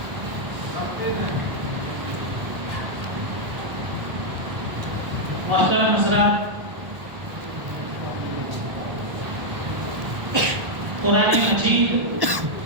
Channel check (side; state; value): left; late; 1.4 ms